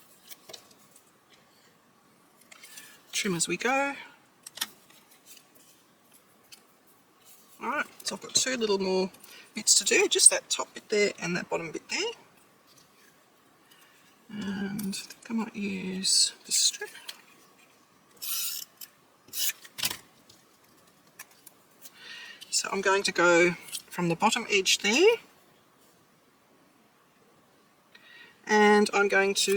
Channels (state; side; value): identical; both; correlation 1.00